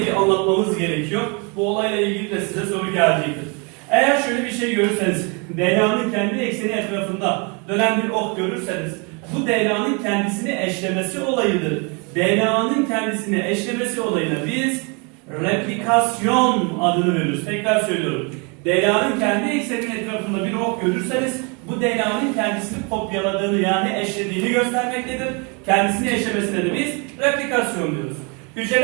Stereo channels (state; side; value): quieter; left; 32.8 dB